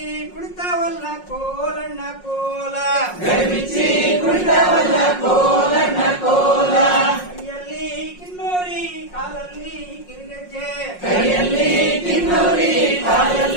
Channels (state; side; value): late; right; 5.5 ms